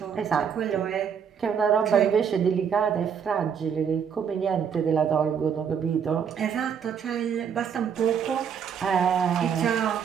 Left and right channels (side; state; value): left; quieter; 7.5 dB